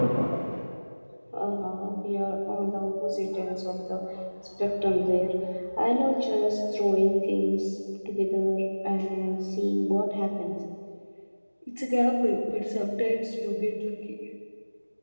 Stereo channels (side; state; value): both; inverted; correlation -1.00